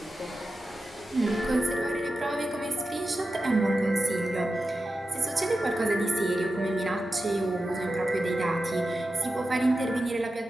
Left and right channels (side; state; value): both; normal; correlation 0.92